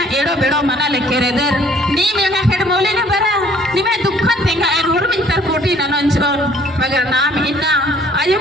एड़ो बेड़ो मना लिखे रे देर निम यंगा खेड मोले न बरा निमे दुखन तेंगा एरोर मिंतर कोटी ननंचोन मगर नाम इन्ना आयो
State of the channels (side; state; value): both; normal; correlation 0.58